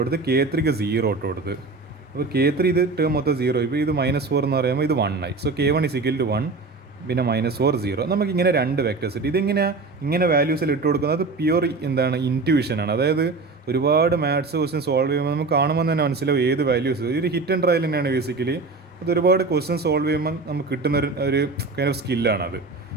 K3ക്ക് 0 ഇട്ട് കൊടുത്ത്. അപ്പോൾ K3 ഇത് ടേം മൊത്തം 0 ആയിപ്പോൾ. ഇത് -4 എന്ന് പറയുമ്പോൾ ഇത് 1 ആയി. സോ K1 1 പിന്നെ -4 0. നമുക്കിങ്ങനെ 2 വെക്ടേഴ്സ് കിട്ടി. ഇങ്ങനെ വാല്യൂസിൽ ഇട്ട് കൊടുക്കുന്നത് പ്യുവർ എന്താണ് ഇൻറ്റ്യൂഷനാണ്. അതായത് ഒരുപാട് മാത്സ് ക്വസ്റ്റ്യൻ സോൾവ് ചെയ്യുമ്പോൾ നമുക്ക് കാണുമ്പോൾ തന്നെ മനസ്സിലാവും ഏത് വാല്യൂസ്. ഒരു ഹിറ്റ് ആൻഡ് ട്രയൽ തന്നെയാണ് ബേസിക്കലി. അത് ഒരുപാട് ക്വസ്റ്റ്യൻ സോൾവ് ചെയ്യുമ്പോൾ നമുക്ക് കിട്ടുന്ന ഒരു കൈൻഡ് ഓഫ് സ്കില്ലാണത്.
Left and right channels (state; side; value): quieter; left; 3.9 dB